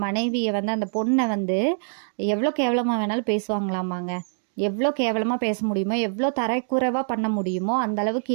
மனைவியை வந்து அந்த பொண்ணை வந்து எவ்வளோ கேவலமாக வேணாலும் பேசுவாங்களாமாங்க. எவ்வளோ கேவலமாக பேச முடியுமோ, எவ்வளோ தரைக்குறைவாக பண்ண முடியுமோ அந்த அளவுக்கு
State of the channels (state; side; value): silent; left; digital silence